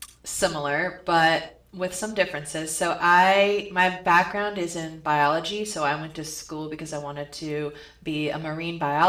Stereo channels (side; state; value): both; identical; correlation 1.00